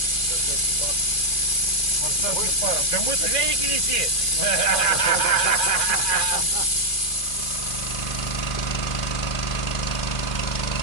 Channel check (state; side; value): late; right; 2.4 ms